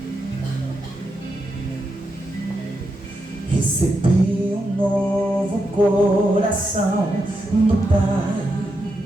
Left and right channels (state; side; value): normal; both; correlation 0.84